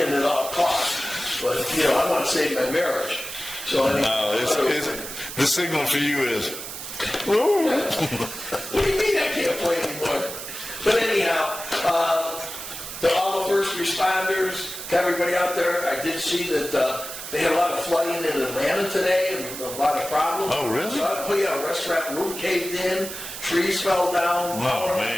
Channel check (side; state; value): right; noise; hiss, 9 dB below the sound